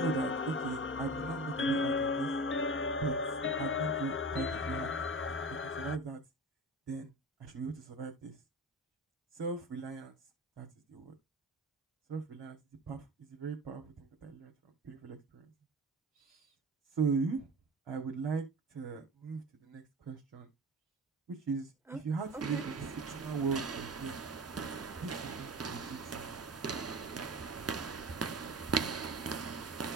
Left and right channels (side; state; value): both; normal; correlation 0.33